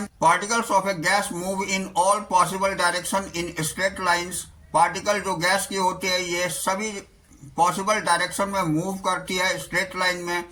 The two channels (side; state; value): both; identical; correlation 1.00